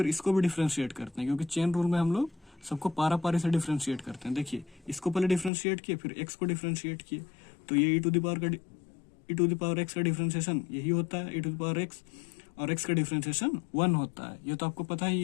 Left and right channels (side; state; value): right; drops out; at 5.5 s